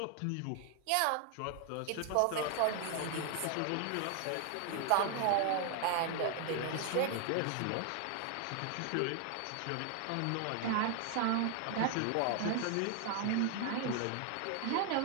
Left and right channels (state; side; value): different; both; correlation 0.00